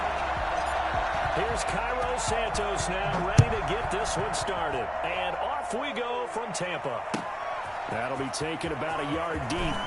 Here's Cairo Santos now ready to get this one started. And off we go from Tampa. That'll be taken about a yard deep.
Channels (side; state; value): both; identical; correlation 1.00